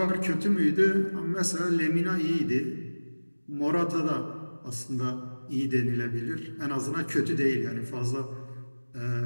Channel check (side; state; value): both; inverted; correlation -1.00